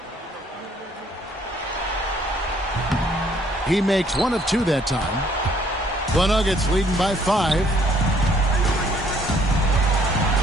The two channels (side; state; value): both; normal; correlation 0.63